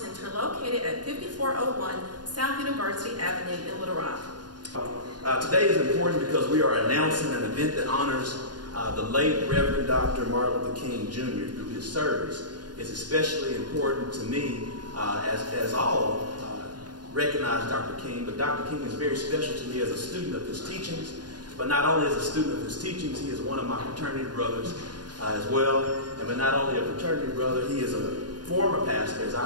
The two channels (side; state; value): left; late; 0.70 ms